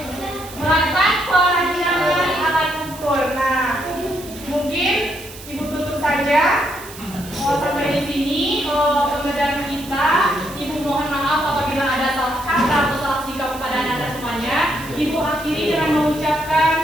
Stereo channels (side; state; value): right; noise; hiss, 16 dB below the sound